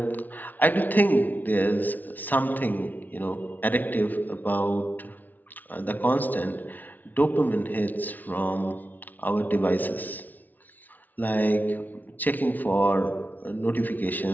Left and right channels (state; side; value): late; right; 0.080 ms